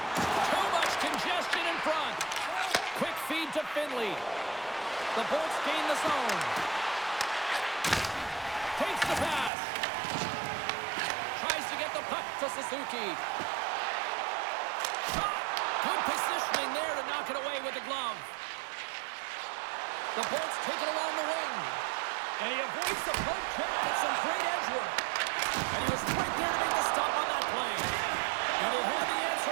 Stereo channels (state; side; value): drops out; left; at 9.5 s